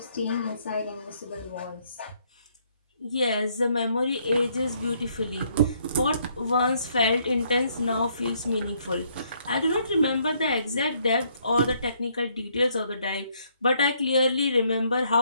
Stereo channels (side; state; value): both; inverted; correlation -0.69